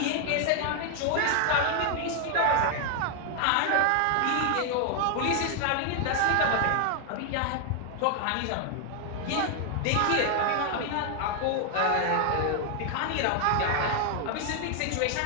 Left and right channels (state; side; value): different; both; correlation 0.00